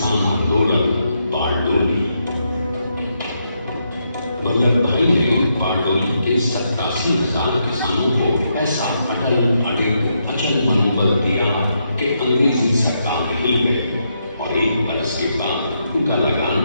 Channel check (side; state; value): both; inverted; correlation -0.80